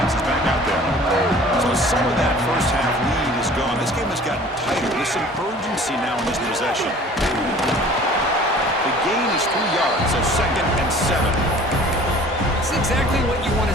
is back out there. So some of that first half lead is gone. This game has gotten tighter. There's some urgency now in this possession. The gain is 3 yards, so 2nd and 7. It's exactly what you want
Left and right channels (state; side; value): normal; both; correlation 0.48